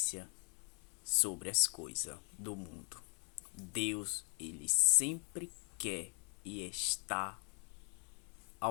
sobre as coisas do mundo. Deus, ele sempre quer e está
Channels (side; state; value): right; quieter; 38.6 dB